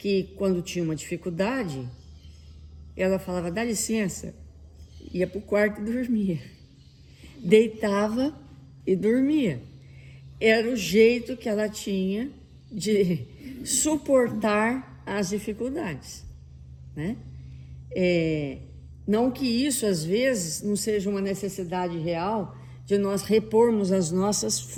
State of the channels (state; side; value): identical; both; correlation 1.00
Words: quando tinha uma dificuldade, ela falava, dá licença, ia para o quarto e dormia. Deitava e dormia. Era o jeito que ela tinha de suportar as dificuldades, né? Não que isso, às vezes, não seja uma necessidade real de nós repormos as nossas